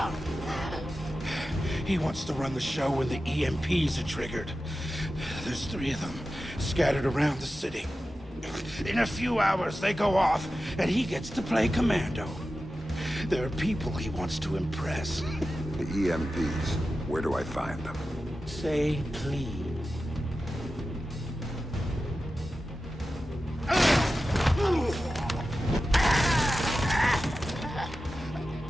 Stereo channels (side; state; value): both; normal; correlation 0.93